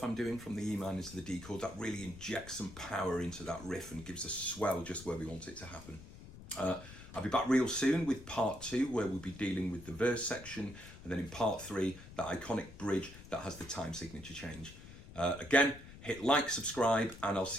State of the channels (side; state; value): left; noise; rumble, 16 dB below the sound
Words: I'm doing from the E minor to the D chord. That really injects some power into that riff and gives a swell just where we want it to happen. I'll be back real soon with part 2, where we'll be dealing with the verse section, and then in part 3, that iconic bridge that has the time signature change. Again, hit like, subscribe, and I'll